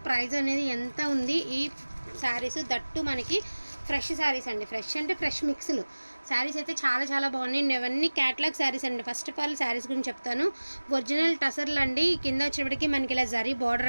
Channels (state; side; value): inverted; both; correlation -1.00